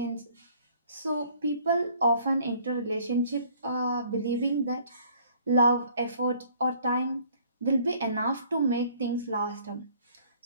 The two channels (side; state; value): both; inverted; correlation -0.58